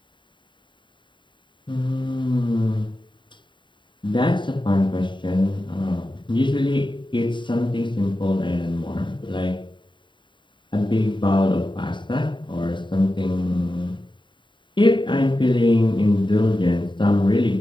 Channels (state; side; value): late; right; 0.23 ms